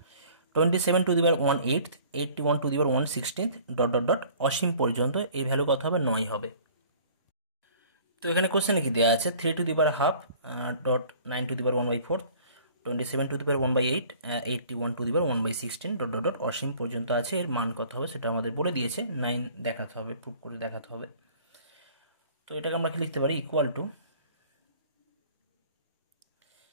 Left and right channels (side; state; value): both; inverted; correlation -0.51